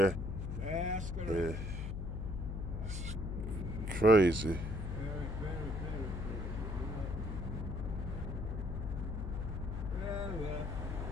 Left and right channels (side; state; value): left; noise; hum, 4 dB below the sound